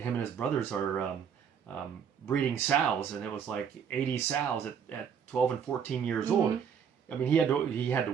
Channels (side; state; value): left; quieter; 7.5 dB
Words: his brothers are breeding sows, and it was like 80 sows at 12 and 14 years old. I mean, he had to